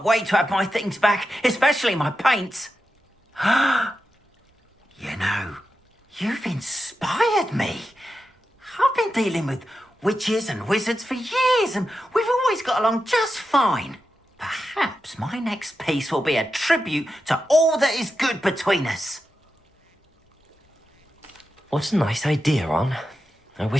wait to have my things back, especially my paints. You know, you've inspired me. I've been dealing with witches and wizards for years, and we've always got along just fine. Perhaps my next piece will be a tribute to all that is good between us. What a nice idea, On. I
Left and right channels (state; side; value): normal; both; correlation 0.90